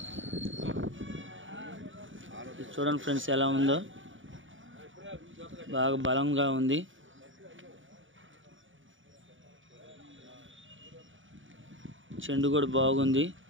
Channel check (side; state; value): left; late; 0.56 ms